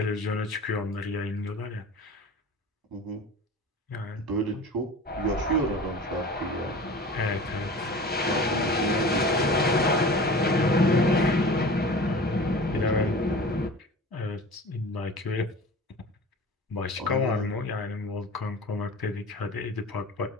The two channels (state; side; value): normal; both; correlation 0.38